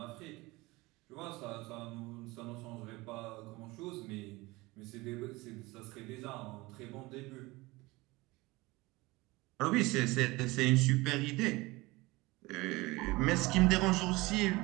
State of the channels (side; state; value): left; quieter; 21.9 dB